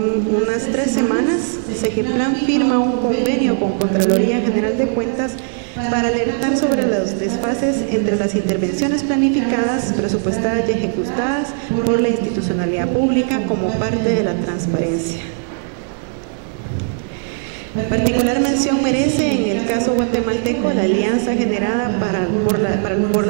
3 semanas, Segeplan firma un convenio con Contraloría General de Cuentas para alertar sobre los desfases entre las intervenciones planificadas, presupuestadas y ejecutadas por la institucionalidad pública como parte de la transparencia. Particular mención merece en el caso guatemalteco la alianza generada por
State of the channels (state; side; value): silent; left; digital silence